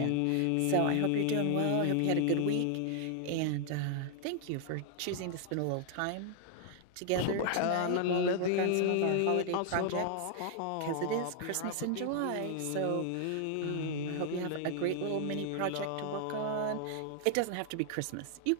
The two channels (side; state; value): both; different; correlation 0.00